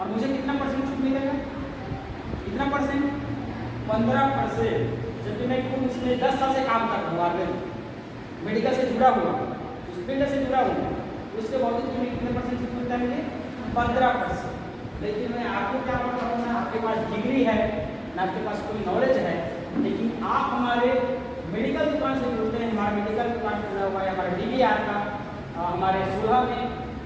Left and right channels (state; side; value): identical; both; correlation 1.00